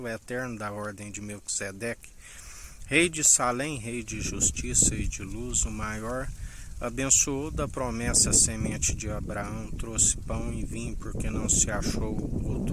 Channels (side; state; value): both; identical; correlation 1.00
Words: eterno da ordem de Melquisedeque, rei de Salém, rei de justiça e de luz, o maior, abençoou da promessa a semente de Abraão, trouxe pão e vinho, porque não se achou